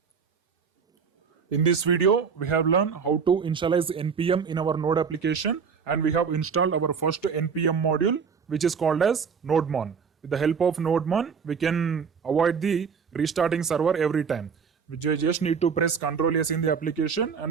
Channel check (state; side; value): quieter; left; 6.1 dB